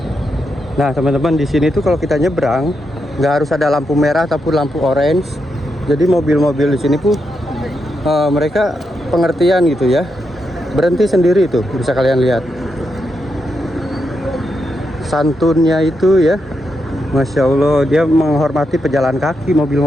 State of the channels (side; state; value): both; normal; correlation 0.83